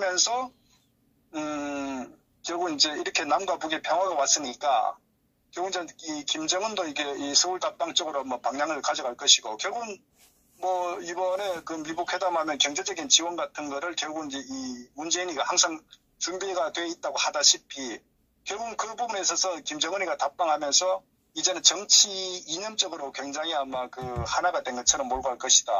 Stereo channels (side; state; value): both; identical; correlation 1.00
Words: 결국 이제 이렇게 남과 북의 평화가 왔으니까 결국 이제 이 김정은도 이게 이 서울 답방 쪽으로 뭐 방향을 가져갈 것이고 결국은 뭐 이번에 그 미북 회담하면 경제적인 지원 같은 거를 결국 이제 이 문재인이가 항상 준비가 돼 있다고 하다시피 결국은 그 부분에 있어서 김정은이가 답방하면서 이제는 정치 이념적으로 굉장히 아마 그 하나가 된 것처럼 몰고 갈